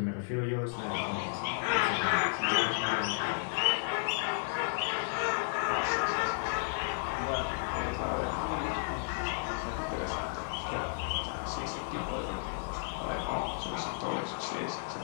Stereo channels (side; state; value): right; silent; 56 dB below the other